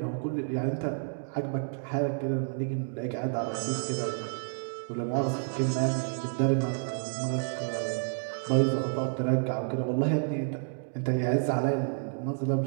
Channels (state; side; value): silent; left; digital silence